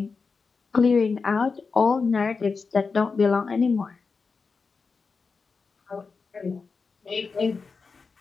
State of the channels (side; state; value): right; quieter; 4.8 dB